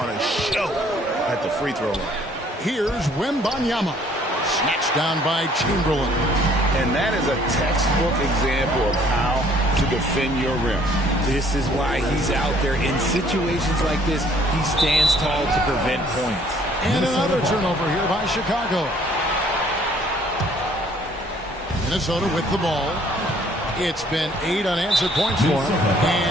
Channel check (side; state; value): both; normal; correlation 0.60